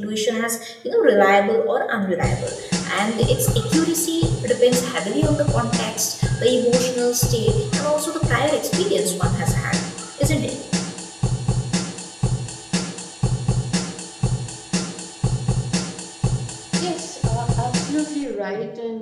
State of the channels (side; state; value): both; identical; correlation 1.00